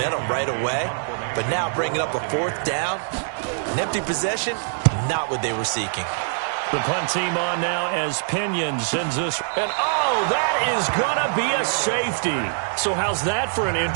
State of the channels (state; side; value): silent; left; digital silence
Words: right away. But now bringing up a 4th down, an empty possession, not what they were seeking. The punt team on now as Pinion sends this. And, oh, that is going to be a safety. So how's that for an